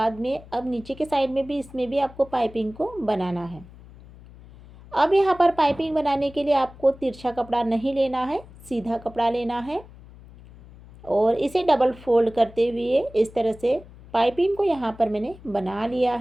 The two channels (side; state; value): left; noise; hum, 20 dB below the sound